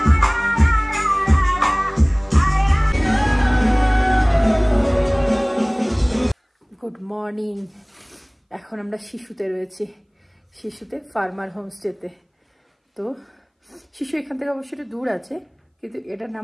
Good morning. এখন আমরা শিশুতে রয়েছি, শিশুতে ফার্মার হোমস্টেতে। তো শিশু এখান থেকে অবশ্যই একটু দূর আছে, কিন্তু এটার নাম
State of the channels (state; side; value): identical; both; correlation 1.00